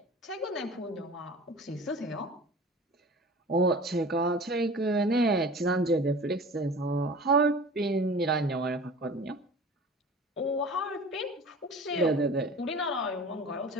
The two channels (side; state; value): both; normal; correlation 0.40